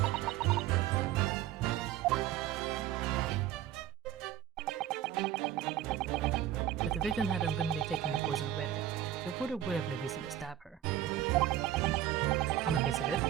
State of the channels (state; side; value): quieter; left; 11.8 dB